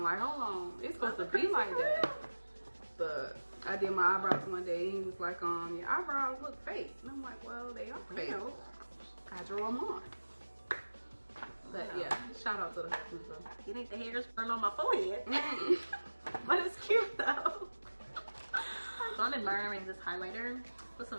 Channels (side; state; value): both; inverted; correlation -1.00